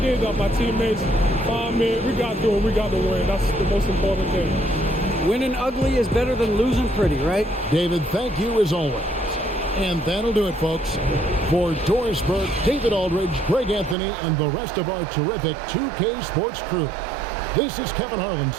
that. My teammates found me. We got to do it. We got to win. That's the most important thing. Winning ugly is better than losing pretty, right? David, thank you as always. And that'll do it, folks. For Doris Burke, David Aldridge, Greg Anthony, and the rest of our terrific 2K Sports crew, this is Kevin Harlan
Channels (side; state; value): left; drops out; at 14.0 s